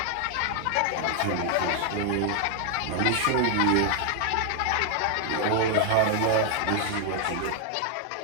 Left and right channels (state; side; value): different; both; correlation 0.00